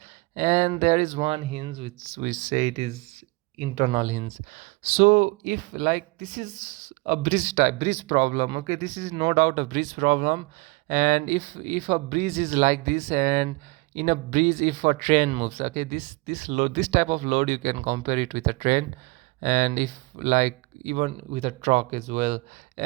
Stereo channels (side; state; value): left; quieter; 24.5 dB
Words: and there is one hinge which we say it is internal hinge. So if like this is a bridge problem, okay, this is no doubt a bridge problem. And if a bridge is like this, and in a bridge if a train moves, okay, this load, this type of load, you can compare it with a train, and if like even with a truck as well.